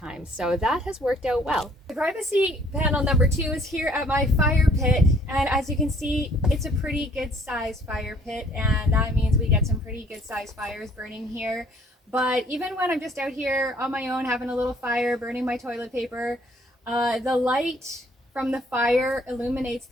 so that has worked out well. The privacy panel number two is here at my fire pit, and as you can see, it's a pretty good sized fire pit, and that means we get some pretty good sized fires burning here. But even when I'm just out here on my own having a little fire, burning my toilet paper, the light from the fire illuminates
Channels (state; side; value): normal; both; correlation 0.60